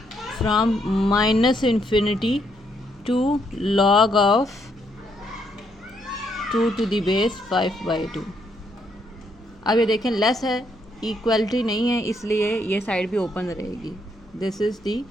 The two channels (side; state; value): left; noise; hum, 29 dB below the sound